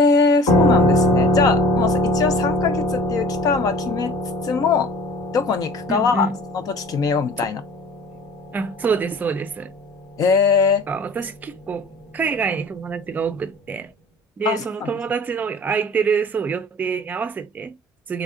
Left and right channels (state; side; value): normal; both; correlation 0.45